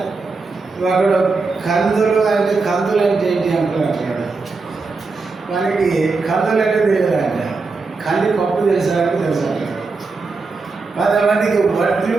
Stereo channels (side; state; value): left; quieter; 4.1 dB